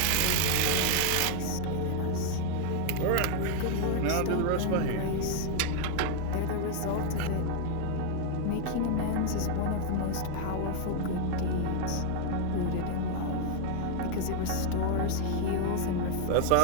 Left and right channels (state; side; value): different; both; correlation 0.00